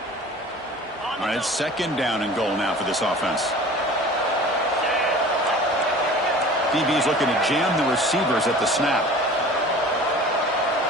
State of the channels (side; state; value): both; normal; correlation 0.42